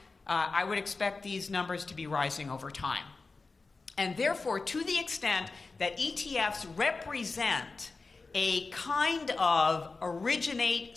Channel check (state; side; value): quieter; right; 3.9 dB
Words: I would expect these numbers to be rising over time. And therefore, to the extent that ETFs represent a kind of originate